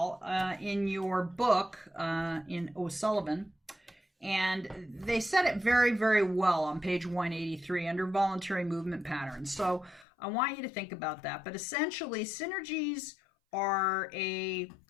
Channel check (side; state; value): right; drops out; at 10.1 s